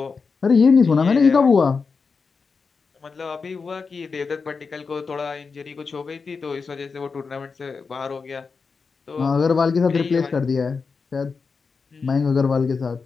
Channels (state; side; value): quieter; right; 4.9 dB